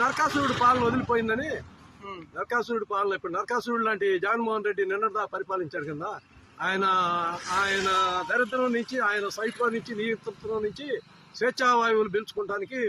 నరకాసురుడు పాలన వదిలిపోయిందని. నరకాసురుడు పాలన ఇప్పుడు నరకాసురుడు లాంటి జగన్మోహన్ రెడ్డి నిన్నటిదా పరిపాలించాడు కదా. ఆయన దరిద్రం నుంచి, ఆయన సైట్లో నుంచి, నియంత్రణలో నుంచి స్వేచ్ఛావాయువులు పీల్చుకోవడానికి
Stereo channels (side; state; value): both; identical; correlation 1.00